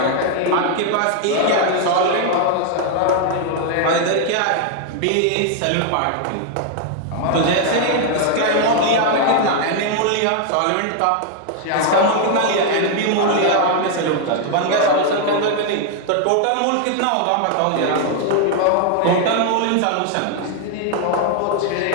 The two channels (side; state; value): both; different; correlation 0.00